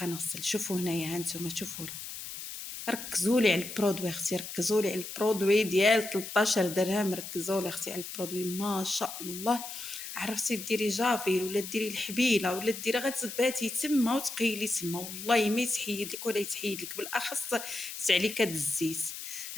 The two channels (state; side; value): noise; left; hiss, 9 dB below the sound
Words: نغسل. شوفوا هنايا ها نتوما، شوفوا ركزوا لي على البرودوي اختي، ركزوا لي على البرودوي ديال 13 درهم، ركزوا لي اختي على البرودوي ما شاء الله. عرفتي ديري جافيل ولا ديري الحبيله ولا ديري غتباتي تما وتقيلي تما، والله ما يتحيد لك ولا يتحيد لك، بالاخص تعليكه الزيت.